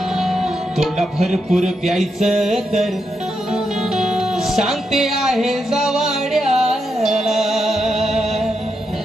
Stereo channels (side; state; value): both; normal; correlation 0.83